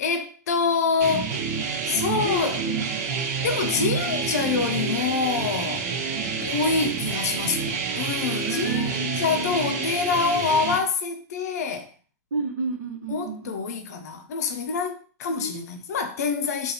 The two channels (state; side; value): normal; both; correlation -0.10